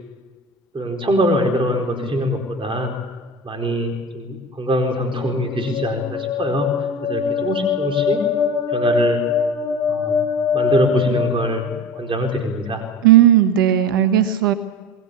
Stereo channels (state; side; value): normal; both; correlation 0.31